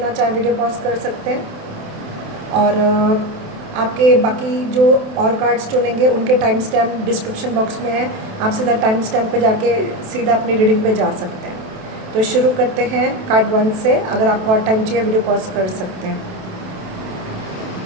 चाहे वीडियो पॉज कर सकते हैं। और आपके बाकी जो और कार्ड्स चुनेंगे उनके टाइम स्टैम्प डिस्क्रिप्शन बॉक्स में है, आप सीधा टाइम स्टैम्प पे जाके सीधा अपनी रीडिंग पे जा सकते हैं। तो शुरू करते हैं कार्ड 1 से। अगर आपको और टाइम चाहिए वीडियो पॉज कर सकते हैं।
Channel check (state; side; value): late; left; 27 ms